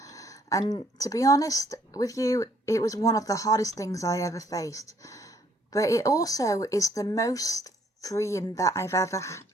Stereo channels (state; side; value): normal; both; correlation 0.65